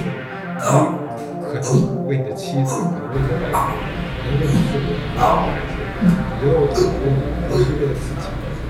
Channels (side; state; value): both; identical; correlation 1.00